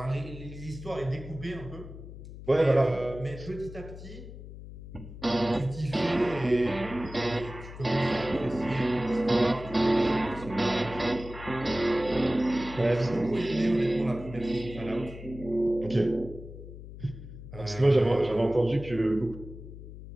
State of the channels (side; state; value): left; noise; hum, 13 dB below the sound